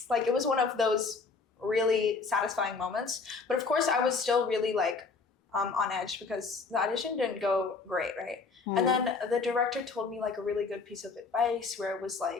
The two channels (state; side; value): quieter; right; 4.5 dB